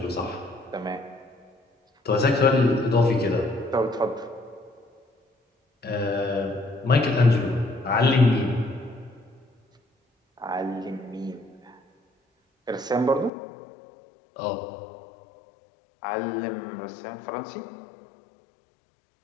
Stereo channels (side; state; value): right; drops out; at 13.3 s